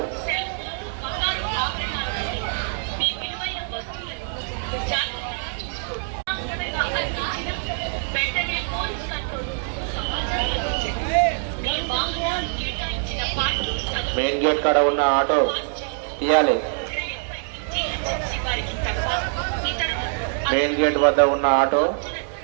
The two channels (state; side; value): silent; left; 55 dB below the other